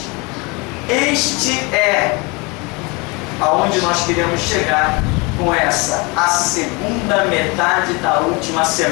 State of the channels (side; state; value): right; quieter; 27.8 dB